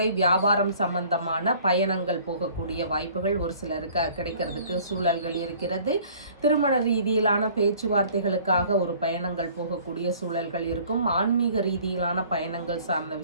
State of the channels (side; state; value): both; inverted; correlation -0.53